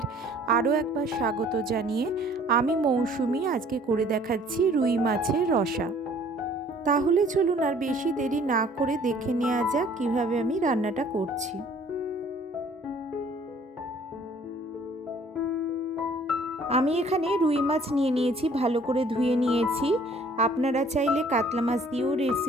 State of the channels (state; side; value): normal; both; correlation 0.56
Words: আরও একবার স্বাগত জানিয়ে আমি মৌসুমি আজকে করে দেখাচ্ছি রুই মাছের রসা। তাহলে চলুন আর বেশি দেরি না করে দেখে নেওয়া যাক কীভাবে আমি রান্নাটা করছি। আমি এখানে রুই মাছ নিয়ে নিয়েছি, ভালো করে ধুয়ে নিয়েছি। আপনারা চাইলে কাতলা মাছ দিয়েও